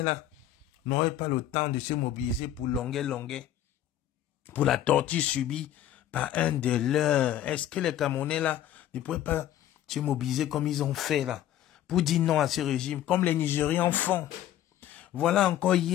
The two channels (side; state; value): right; quieter; 11.9 dB